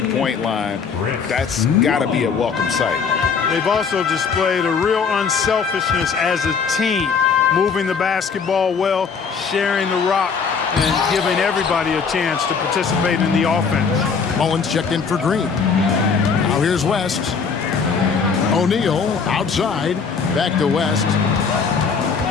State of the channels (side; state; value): right; quieter; 5.7 dB